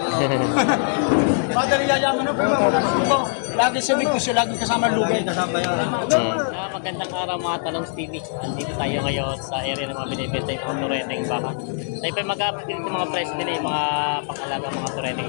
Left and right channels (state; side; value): silent; right; digital silence